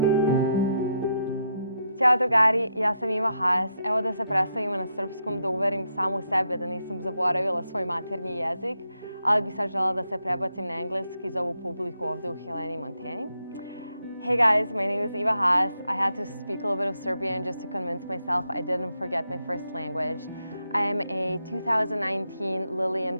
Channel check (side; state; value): both; inverted; correlation -0.81